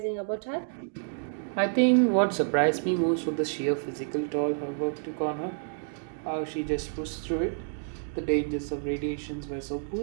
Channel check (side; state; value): left; silent; digital silence